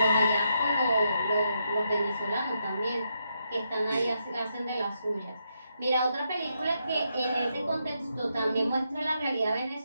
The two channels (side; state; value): both; inverted; correlation -0.81